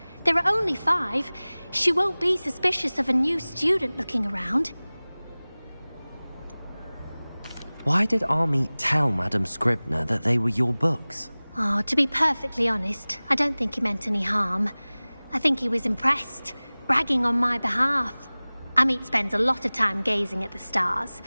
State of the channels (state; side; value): inverted; both; correlation -1.00